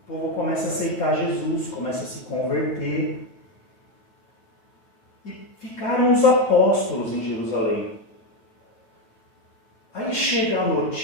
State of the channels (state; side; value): late; right; 9.1 ms